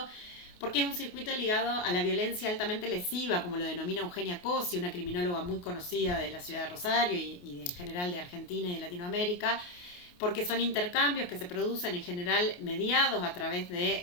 porque es un circuito ligado a la violencia altamente lesiva, como lo denomina Eugenia Cosi, una criminóloga muy conocida de la ciudad de Rosario y en general de Argentina y de Latinoamérica, porque son intercambios que se producen en general mediados a través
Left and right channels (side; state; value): right; late; 28 ms